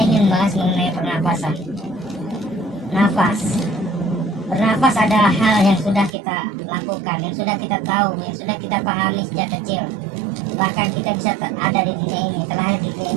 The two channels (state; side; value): drops out; left; at 6.2 s